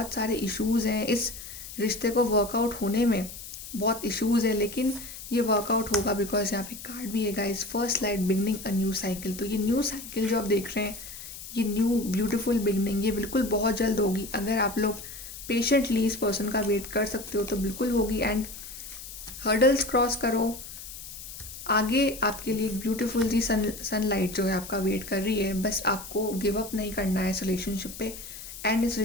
सारे इश्यूज़ हैं, इस रिश्ते को वर्कआउट होने में बहुत इश्यूज़ है, लेकिन ये वर्कआउट होगा बिकॉज यहाँ पे कार्ड भी है guys, first light beginning a new cycle. तो ये न्यू साइकिल जो आप देख रहे हैं, ये न्यू ब्यूटीफुल बिगनिंग, ये बिल्कुल बहुत जल्द होगी। अगर आप लोग पेशेंटली इस पर्सन का वेट कर सकते हो तो बिल्कुल होगी। एंड हर्डल्स क्रॉस करो, आगे आपके लिए एक ब्यूटीफुल सी सनलाइट जो है आपका वेट कर रही है। बस आपको गिव अप नहीं करना है इस रिलेशनशिप पे, एंड इस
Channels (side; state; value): left; noise; hiss, 12 dB below the sound